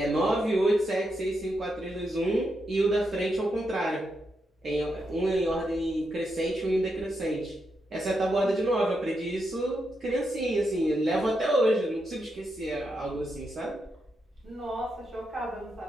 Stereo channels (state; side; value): normal; both; correlation 0.84